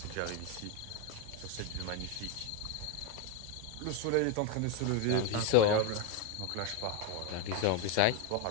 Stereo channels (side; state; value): both; different; correlation 0.02